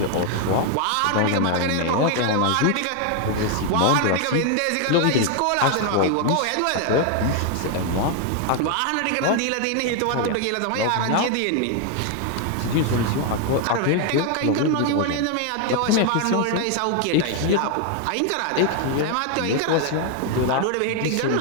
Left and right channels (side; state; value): both; different; correlation 0.00